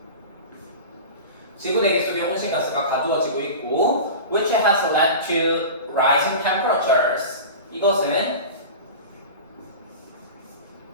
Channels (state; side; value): inverted; both; correlation -0.31